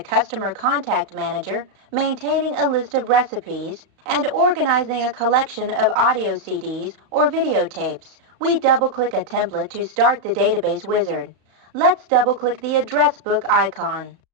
contact manager, maintaining a list of recipes, and organizing a collection of audio CDs or videotapes. We double-click a template to start the Database Wizard. Let's double-click the Address Book icon.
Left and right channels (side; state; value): left; late; 35 ms